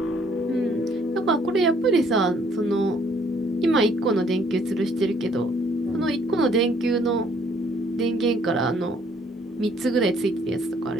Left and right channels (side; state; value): both; normal; correlation 0.63